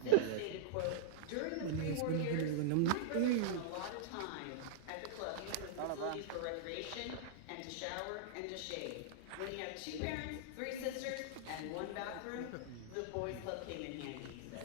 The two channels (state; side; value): different; both; correlation -0.01